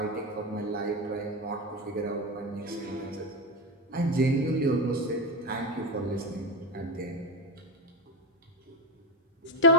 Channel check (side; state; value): both; normal; correlation 0.14